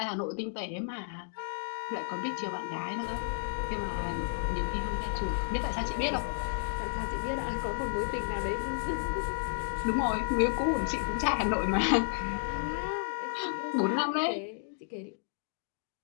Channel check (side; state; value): right; silent; digital silence